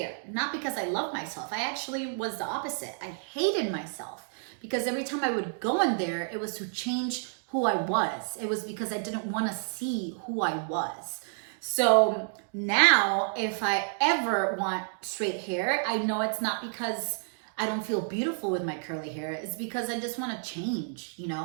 Not because I love myself. I actually was the opposite. I hated myself because every time I would go in there, it was to change who I was. It was because I didn't want to see who I was. So now if I ever want straight hair, I know it's not because I don't feel beautiful with my curly hair. It's because I just want to change,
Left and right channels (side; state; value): left; silent; digital silence